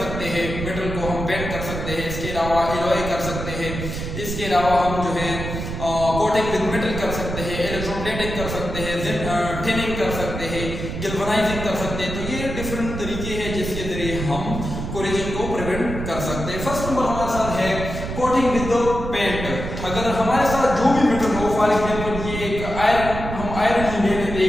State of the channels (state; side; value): noise; right; rumble, 6 dB below the sound